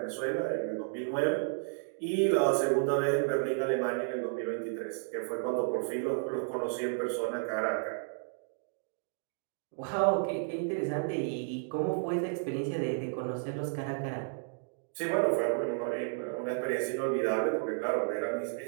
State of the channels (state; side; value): silent; left; digital silence